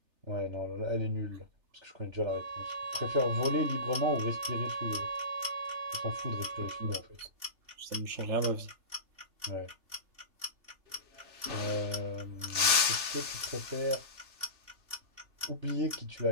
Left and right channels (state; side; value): late; left; 3.3 ms